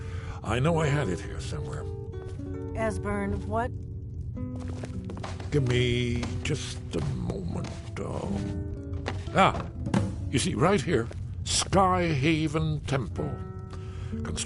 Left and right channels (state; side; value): identical; both; correlation 1.00